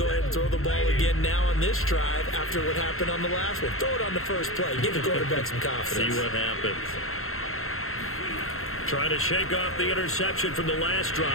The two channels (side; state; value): right; late; 0.62 ms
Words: ahead and throw the ball again now on this drive after what happened on the last one. Throw it on the first play. Give the quarterback some confidence. See what happens. Trying to shake off the interception from the last